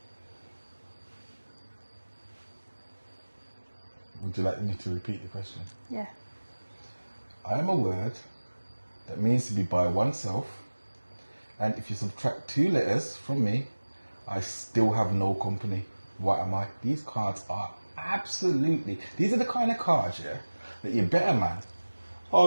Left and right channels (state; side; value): inverted; both; correlation -1.00